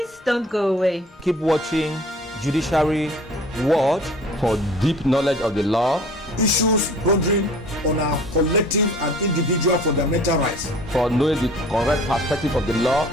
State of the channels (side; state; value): both; normal; correlation 0.48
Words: don't go away. Keep watching Judiciary Watch for deep knowledge of the law, issues bordering on our collective and individual fundamental rights, for knowing the correct perspective of the law,